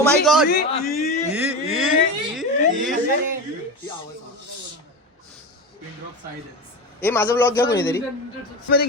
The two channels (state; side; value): normal; both; correlation 0.23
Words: माय गॉड ए माझा ब्लॉग घ्या कोणीतरी मध्ये